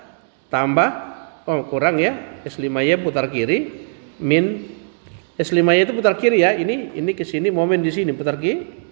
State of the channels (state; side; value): silent; left; digital silence